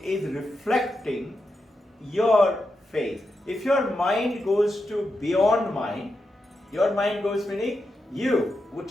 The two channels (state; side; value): normal; both; correlation 0.87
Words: is reflecting your face. If your mind goes to beyond mind, your mind goes meaning you,